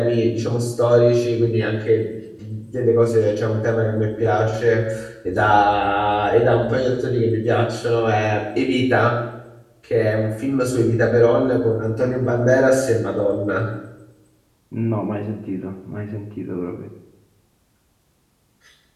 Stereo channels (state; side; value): identical; both; correlation 1.00